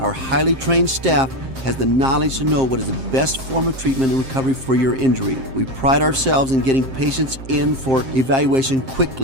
highly trained staff has the knowledge to know what is the best form of treatment and recovery for your injury. We pride ourselves in getting patients in for evaluation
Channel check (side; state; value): left; late; 7.6 ms